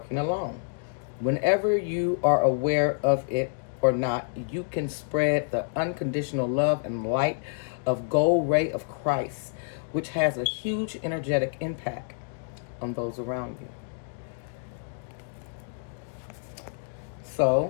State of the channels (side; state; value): right; silent; digital silence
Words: alone. Whenever you are aware of it or not, you can spread the unconditional love and light of gold ray of Christ, which has a huge energetic impact on those around you.